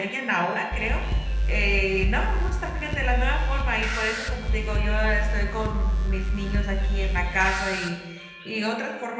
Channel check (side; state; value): both; identical; correlation 1.00